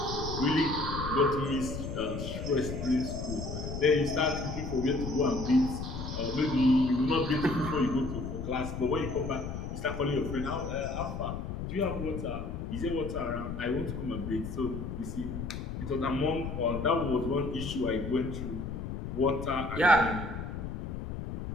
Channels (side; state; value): left; noise; rumble, 6 dB below the sound